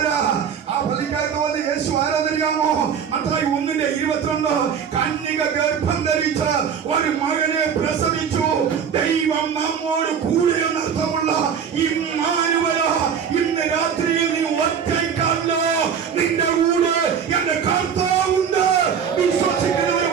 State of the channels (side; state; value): left; quieter; 7.4 dB